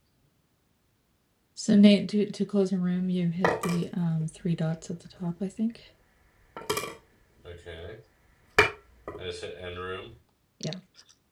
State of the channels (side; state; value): both; identical; correlation 1.00